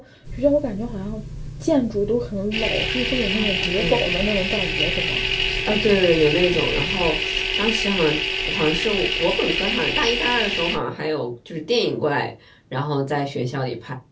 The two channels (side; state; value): both; identical; correlation 1.00